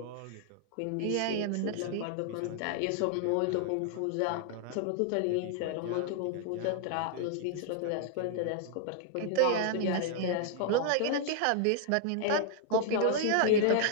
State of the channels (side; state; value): both; different; correlation -0.01